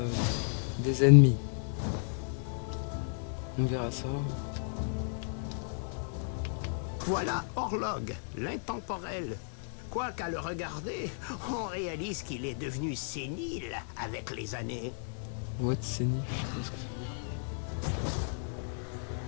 des ennemis. On verra ça. Voilà Orlog, l'intemporel. Quoi qu'à le regarder, on réalise qu'il est devenu sénile avec les années. What c'est nif, je sais pas ce que ça veut dire.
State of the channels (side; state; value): right; silent; digital silence